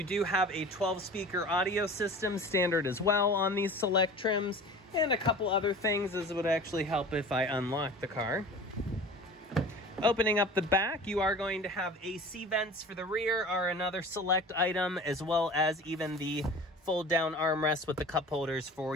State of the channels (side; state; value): both; normal; correlation 0.39